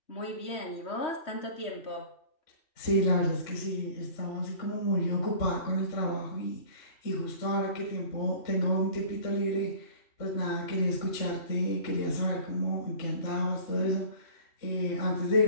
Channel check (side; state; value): right; late; 3.5 ms